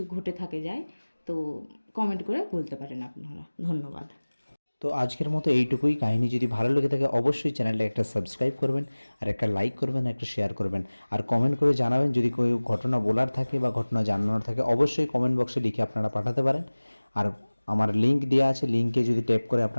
ঘটে থাকে যায় তো কমেন্ট করে বলতে পারেন আপনারা। ধন্যবাদ। তো আজকের মতো এইটুকুই। কাহিনী যদি ভালো লেগে থাকে অবশ্যই চ্যানেলটা একটা সাবস্ক্রাইব করবেন, আর একটা লাইক করবেন, একটা শেয়ার করবেন, আর কমেন্ট করে জানাবেন। যদি কোনো ঘটনা বলার থাকে বা ঘটনা জানানোর থাকে অবশ্যই কমেন্ট বক্সে লিখে আপনারা পাঠাতে পারেন। আর আমার লিঙ্ক দেওয়া আছে, লিঙ্কে যদি ট্যাপ করে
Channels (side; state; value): both; inverted; correlation -1.00